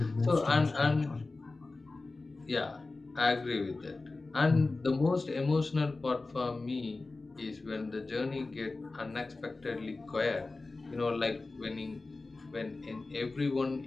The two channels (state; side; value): quieter; right; 3.5 dB